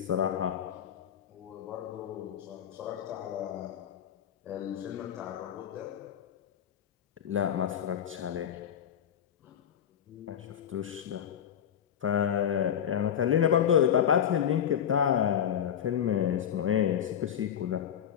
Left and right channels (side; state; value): right; quieter; 9.3 dB